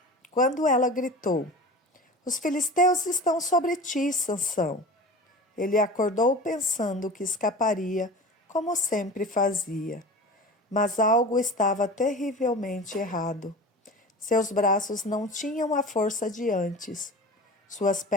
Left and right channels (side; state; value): both; normal; correlation 0.34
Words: estão sobre ti, Sansão. Ele acordou pensando que escaparia, como sempre fazia. Mas algo estava terrivelmente errado. Seus braços não tinham a força de antes. Suas